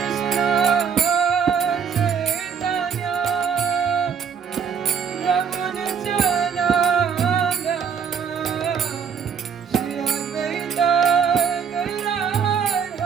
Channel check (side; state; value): left; quieter; 6.9 dB